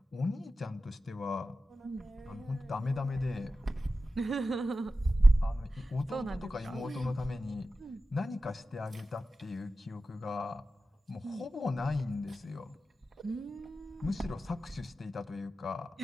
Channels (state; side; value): normal; both; correlation 0.93